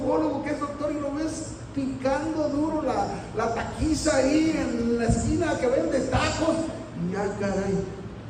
que es doctor, y lo ves picando duro la taquiza ahí en la esquina que vende tacos. Y ya, caray,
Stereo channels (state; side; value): identical; both; correlation 1.00